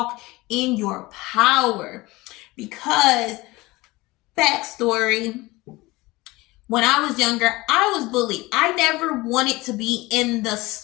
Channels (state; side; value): quieter; right; 21.1 dB